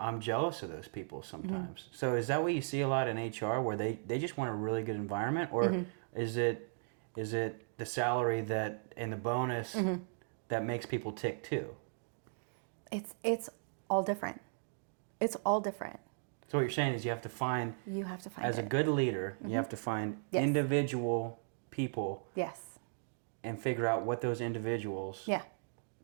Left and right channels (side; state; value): left; silent; digital silence